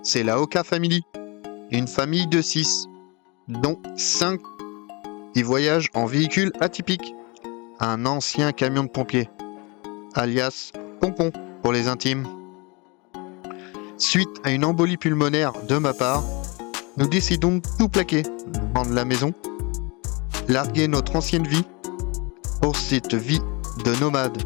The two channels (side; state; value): right; quieter; 28.1 dB